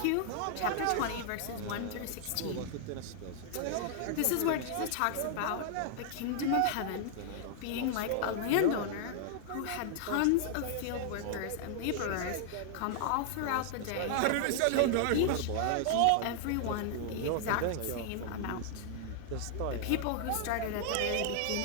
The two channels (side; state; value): both; different; correlation -0.01